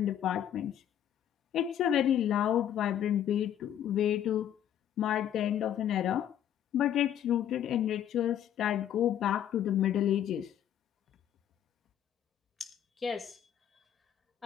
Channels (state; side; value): quieter; right; 10.3 dB